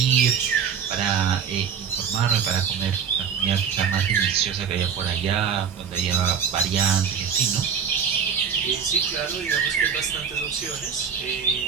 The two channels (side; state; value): left; quieter; 7.2 dB